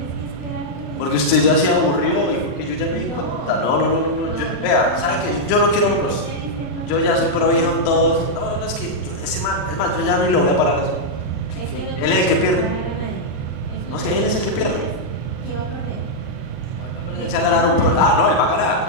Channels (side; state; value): right; late; 39 ms